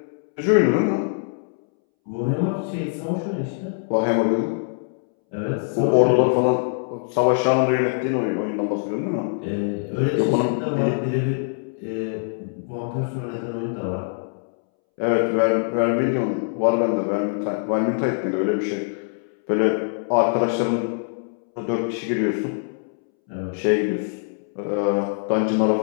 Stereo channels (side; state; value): right; silent; 63 dB below the other